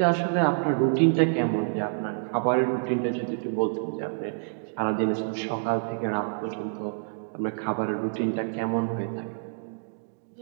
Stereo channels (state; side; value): silent; left; digital silence